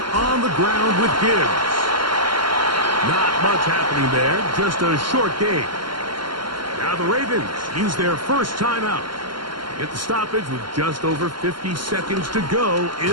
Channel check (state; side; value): late; left; 0.72 ms